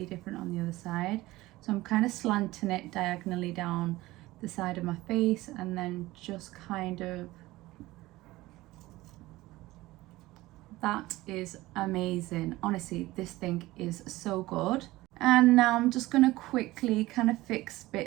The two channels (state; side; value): quieter; left; 18.4 dB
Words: different on the other side. So I'm kind of slanting it diagonally down the side of my face, and then just kind of, that is amazing. Honestly, this thing is so good. And now I'm just going to quickly kind of fix